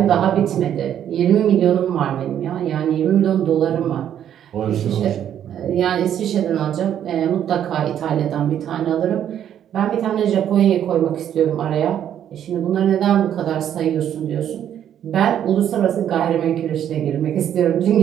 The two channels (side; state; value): left; quieter; 10.0 dB